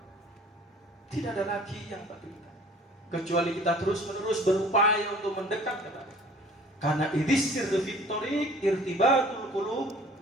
Tidak ada lagi yang patut kita, kecuali kita terus-menerus berupaya untuk mendekat kepada. Karena idhis sirri thoriq irtibatul qulub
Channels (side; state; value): both; normal; correlation 0.51